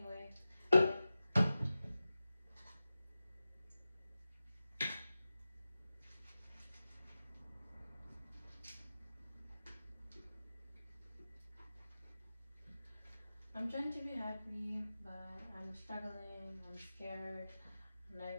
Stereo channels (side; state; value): both; inverted; correlation -0.94